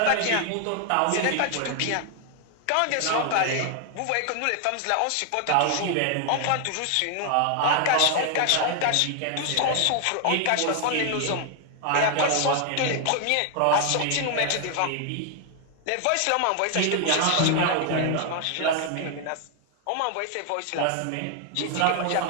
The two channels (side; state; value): both; different; correlation 0.00